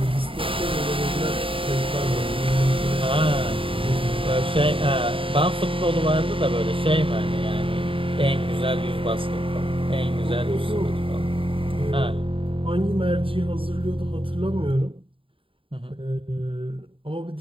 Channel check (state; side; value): late; left; 0.26 ms